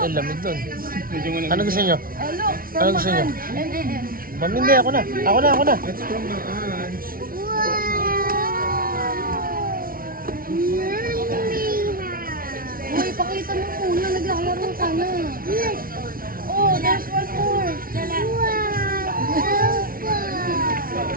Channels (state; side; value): late; left; 0.42 ms